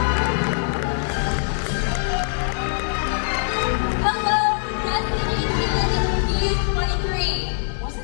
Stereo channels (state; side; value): silent; right; digital silence